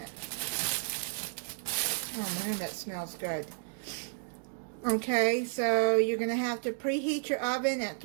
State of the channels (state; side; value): silent; left; digital silence